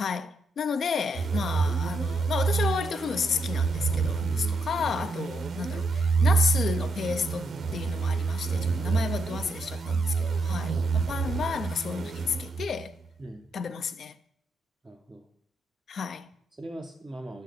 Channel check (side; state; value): both; normal; correlation 0.78